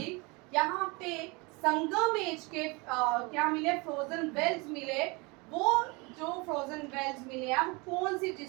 यहाँ पे संगमेश के क्या मिले? फ्रोजन वेल्स मिले। वो जो फ्रोजन वेल्स मिले हैं कौन सी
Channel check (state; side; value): quieter; left; 27.5 dB